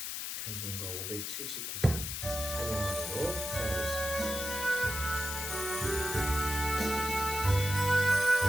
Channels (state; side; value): noise; left; hiss, 4 dB below the sound